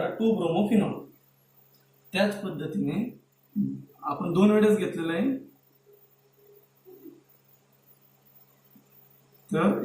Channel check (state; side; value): identical; both; correlation 1.00